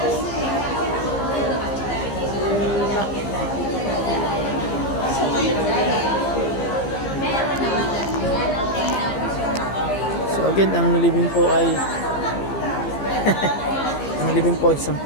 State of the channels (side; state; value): right; late; 15 ms